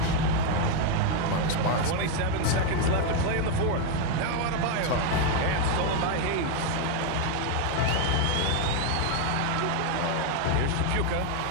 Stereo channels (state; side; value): different; both; correlation 0.01